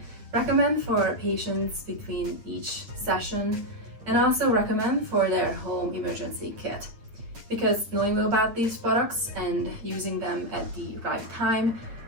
recommend for patients between each session, and also recommend for their home emergency kit. Because knowing about these products and using them at the right time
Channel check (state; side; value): late; left; 8.8 ms